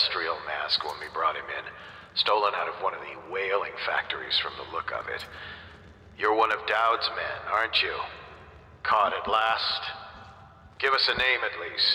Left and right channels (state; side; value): identical; both; correlation 1.00